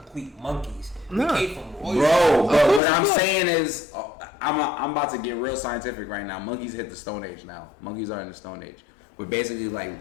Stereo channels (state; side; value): drops out; right; at 2.8 s